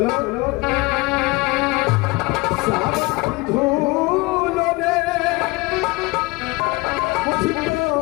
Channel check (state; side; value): quieter; right; 23.9 dB